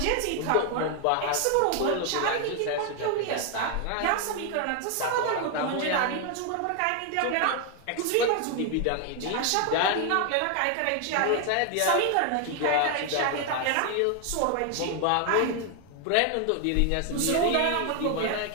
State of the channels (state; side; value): different; both; correlation 0.01